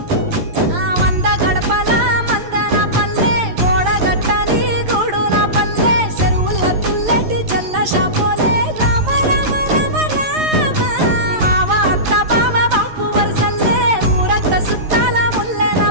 వంద గడపల మందన పల్లె గోడ గట్టని గూడున పల్లె చెరువుల తుల్లెటి చల్ల షాపోలే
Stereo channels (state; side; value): late; left; 11 ms